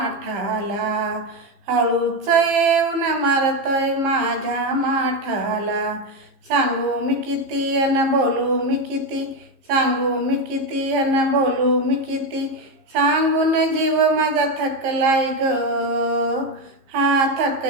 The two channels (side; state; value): left; late; 15 ms